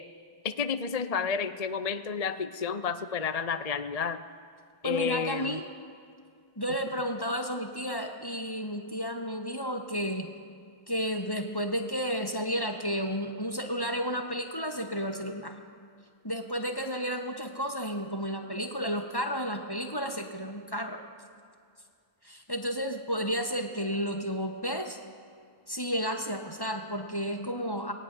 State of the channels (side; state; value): right; late; 1.1 ms